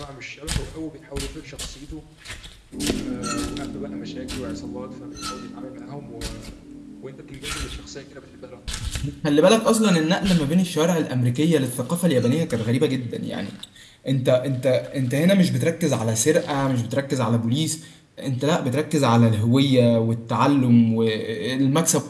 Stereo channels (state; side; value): identical; both; correlation 1.00